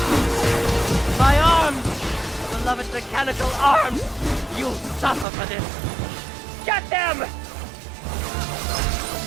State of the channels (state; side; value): drops out; left; at 5.2 s